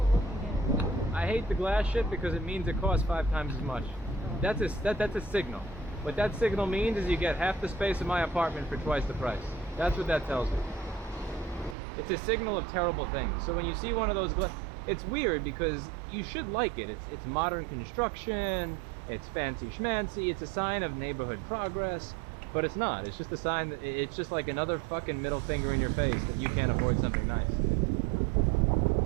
looking at it. I hate the glass shit because it means it costs 5 times as much. That's a signal. What that signal means is you get half the space in my apartment for twice the price. That's what that tells me. It's a signal of terrible things. So when you see one of those it's weird because you should like it. It's modern construction, it's fancy schmancy, it's a sign of neighborhood progress, but it's not. It's just a sign that it's just like another fucking middle finger in your face that you can't afford something nice.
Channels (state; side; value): drops out; left; at 11.8 s